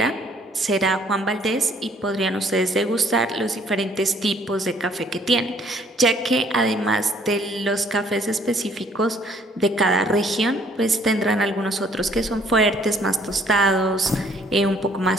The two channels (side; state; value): both; normal; correlation 0.61